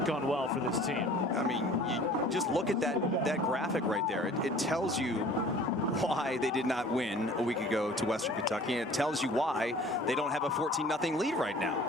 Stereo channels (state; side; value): normal; both; correlation 0.48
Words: gone well for this team. I mean, you just look at that graphic right there. It tells you why they did not win a week ago to Western Kentucky, and it tells you why they don't have a 14-0 lead right now.